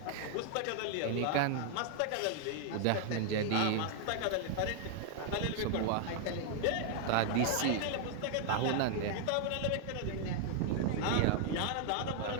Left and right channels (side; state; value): both; different; correlation 0.00